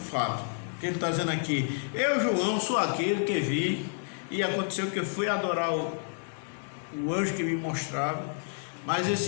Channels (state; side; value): silent; right; digital silence